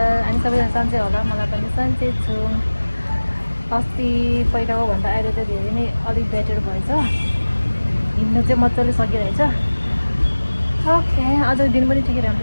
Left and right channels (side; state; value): both; inverted; correlation -1.00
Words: I'm सबैजना सन्चै होला मलाई पनि सन्चै छु अस्ति पहिलाको भन्दा अहिले त धेरै नै अलि बेटर भएछ हिँड्नु चाहिँ मजाले सकिरहेछ ओके आज दिन पनि ठिकै